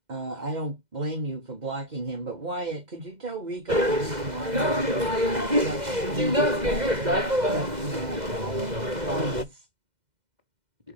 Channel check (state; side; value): late; left; 2.0 ms